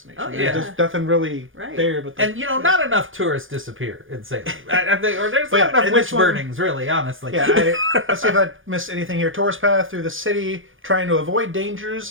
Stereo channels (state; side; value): late; left; 0.58 ms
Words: Oh, yeah. There's nothing really there. But And, not enough tourists disappear in Salem. I think, or there's not enough witch burnings, really, honestly. Yeah, let's see if I missed anything here. Tourist path through the city, trying to avoid